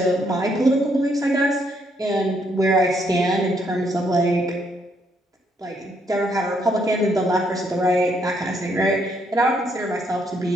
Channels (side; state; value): both; normal; correlation 0.73